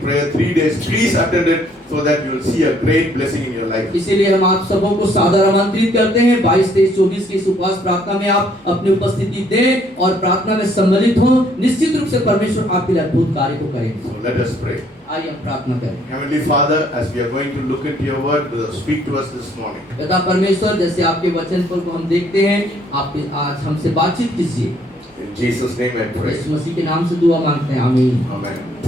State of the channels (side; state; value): both; normal; correlation 0.65